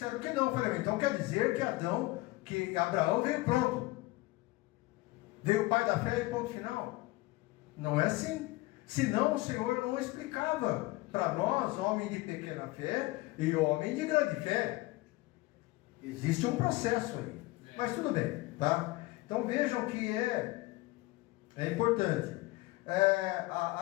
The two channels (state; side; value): quieter; right; 20.7 dB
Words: que não. Eu falei, então quer dizer que Abraão veio pronto. Veio o pai da fé e ponto final. Não é assim. Senão o Senhor não explicava para nós, homem de pequena fé e homem de grande fé. Existe um processo aí. Mas tudo bem, tá? Então vejam que é importante.